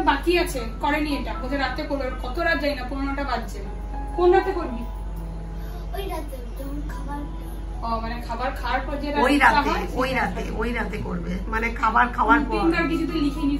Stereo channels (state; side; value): identical; both; correlation 1.00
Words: বাকি আছে, করেনি এটা। ওদের রাতে করবে, কত রাত যাই না, 15টা বাজছে। কোন রাতে করবি? ওই রাতে যখন খাবার, ও মানে খাবার খাওয়ার পর যে ওই রাতে করবে, মানে খাবার খাওয়ার পর। রুটিনটা কিছু তো লিখিনি,